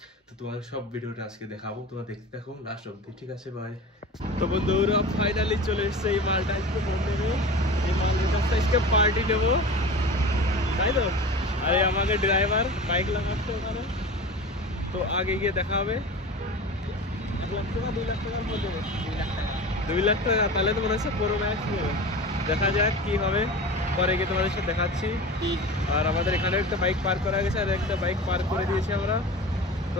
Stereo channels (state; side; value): normal; both; correlation 0.34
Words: তো তোমাদের সব ভিডিওটা আজকে দেখাবো, তোমরা দেখতে থাকো লাস্ট অব্দি, ঠিক আছে? ভাই তো বন্ধুরা ফাইনালি চলে এসছে এই মালটা, আজকে ফোন নেবে। এই মালের কাছটা আজকে পার্টি নেবো, তাই তো? আরে আমাকে ড্রাইভার বাইক লাগাচ্ছে ওখানে, তো আগে গিয়ে দেখা হবে। 1 লাখ টাকা 2 লাখ টাকার মধ্যে 2 লাখ টাকা, তাহলে তো মনে হচ্ছে পুরো ম্যাচ নেবে। দেখা যাক কি হবে, পরে গিয়ে তোমাদের সাথে দেখাচ্ছি। আর আমাদের এখানে একটা বাইক পার্ক করা গেছে, আর একটা বাইক পার্ক করে দিয়েছি আমরা, তো